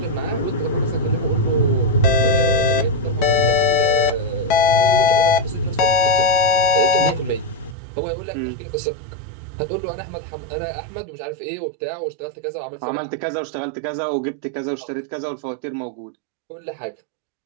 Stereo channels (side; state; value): left; drops out; at 7.8 s